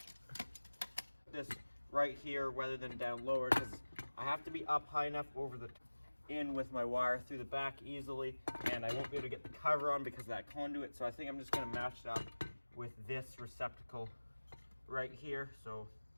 This right here rather than down lower, because I have to be up high enough over the in with my wire through the back easily, and I won't be able to get the cover on because of that conduit. So I think I'm just going to match it up with this receptacle right here. So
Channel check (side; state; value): both; inverted; correlation -1.00